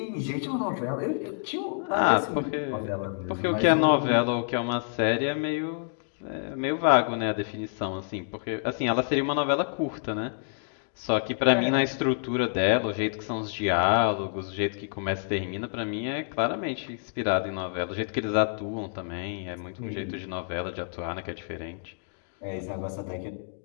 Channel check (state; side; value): silent; right; digital silence